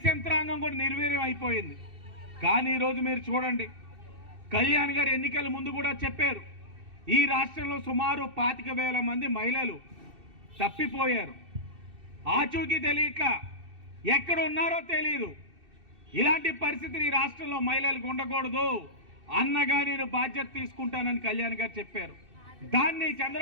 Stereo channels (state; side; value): late; left; 2.6 ms